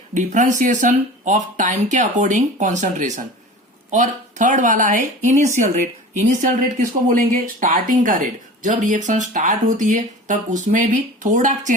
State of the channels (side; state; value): both; normal; correlation 0.37